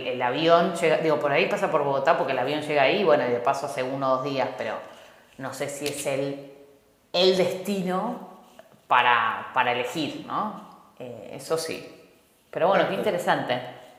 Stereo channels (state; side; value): identical; both; correlation 1.00